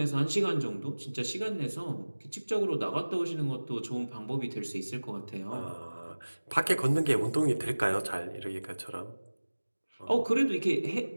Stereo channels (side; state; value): both; inverted; correlation -1.00